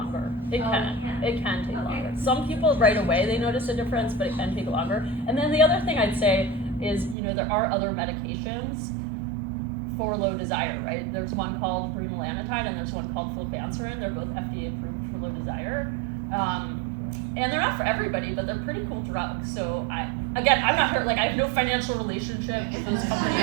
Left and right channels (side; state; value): left; drops out; at 7.2 s